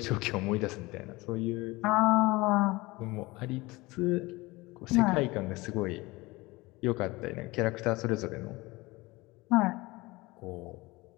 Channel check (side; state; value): right; quieter; 22.0 dB